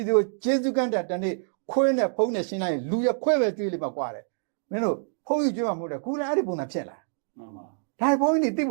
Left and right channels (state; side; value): silent; left; digital silence